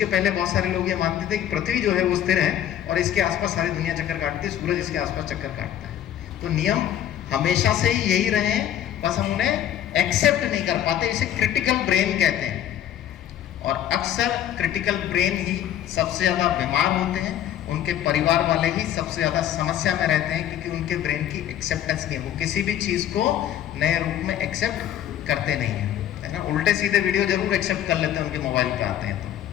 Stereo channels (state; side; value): quieter; right; 11.0 dB